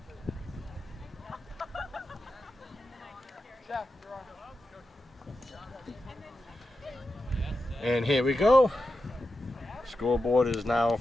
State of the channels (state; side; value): normal; both; correlation 0.90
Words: And here we go. Scoreboard is now